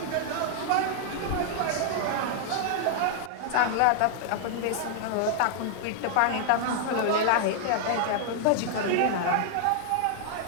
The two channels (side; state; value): both; different; correlation -0.01